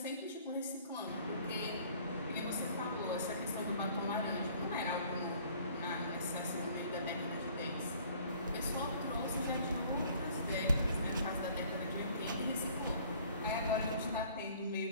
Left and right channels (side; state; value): both; inverted; correlation -0.55